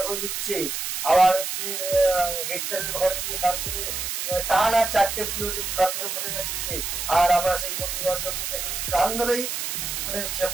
করে দিচ্ছে, আবার হচ্ছে হেড স্যারের ঘরে গিয়ে কান ধরে টানা 4টে পিরিয়ড কান ধরে বসে যাচ্ছে, আর আমরা সেই বন্ধু বান্ধব কান ধরেই মানে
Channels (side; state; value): right; noise; hiss, 3 dB below the sound